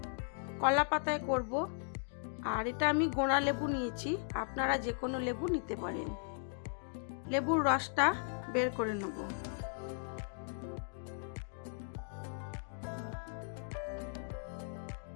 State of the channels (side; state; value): right; silent; digital silence